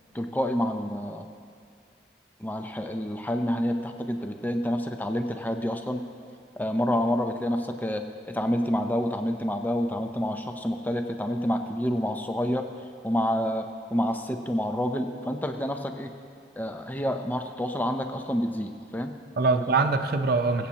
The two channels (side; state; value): both; normal; correlation 0.71